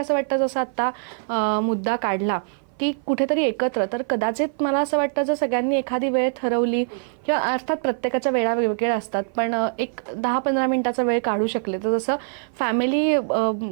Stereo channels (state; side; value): silent; left; 57 dB below the other